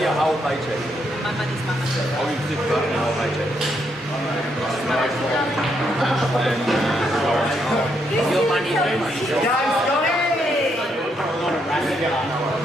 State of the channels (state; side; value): normal; both; correlation 0.76